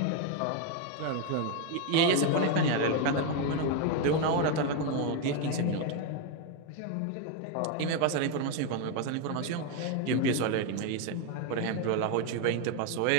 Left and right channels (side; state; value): both; different; correlation 0.01